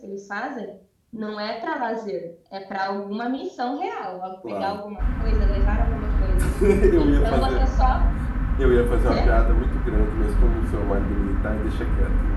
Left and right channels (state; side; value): identical; both; correlation 1.00